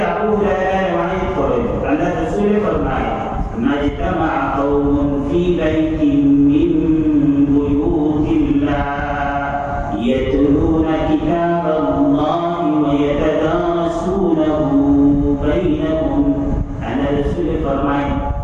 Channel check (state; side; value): identical; both; correlation 1.00